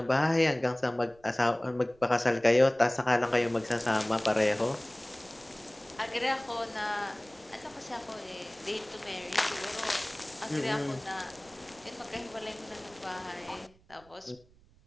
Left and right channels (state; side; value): noise; right; rumble, 29 dB below the sound